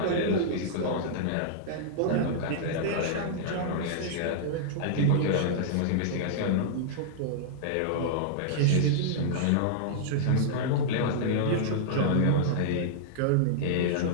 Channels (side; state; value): both; different; correlation -0.02